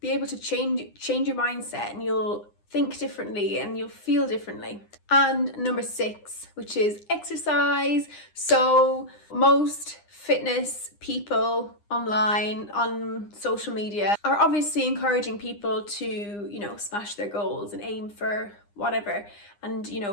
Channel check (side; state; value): right; late; 9.8 ms